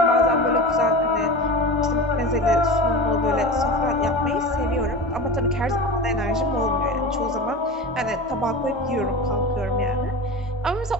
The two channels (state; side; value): normal; both; correlation 0.30